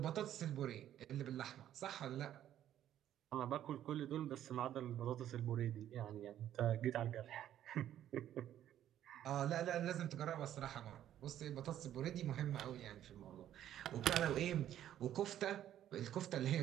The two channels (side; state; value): left; quieter; 11.5 dB